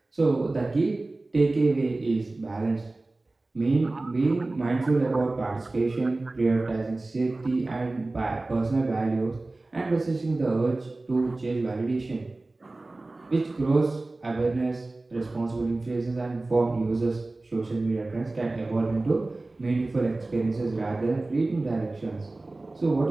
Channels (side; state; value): left; quieter; 3.1 dB